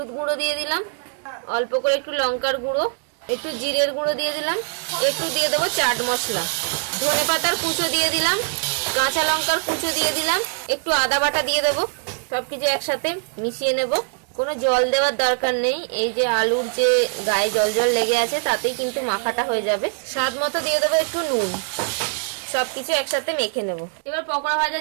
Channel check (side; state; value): left; silent; digital silence